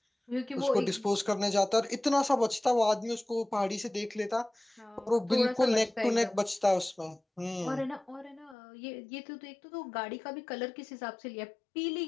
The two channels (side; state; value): right; drops out; at 8.6 s